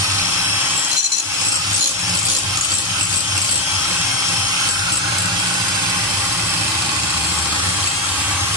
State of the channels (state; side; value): normal; both; correlation 0.09